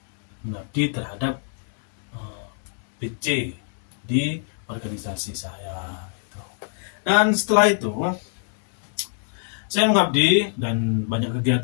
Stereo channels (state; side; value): silent; right; digital silence